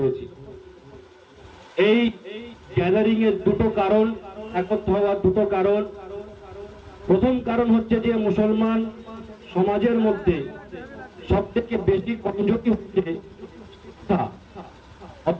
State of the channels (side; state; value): both; identical; correlation 1.00